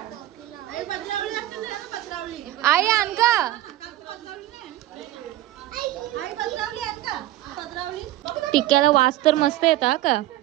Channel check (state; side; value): quieter; left; 15.1 dB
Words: आई आण का टिक्क्याला वास तर मस्त येता का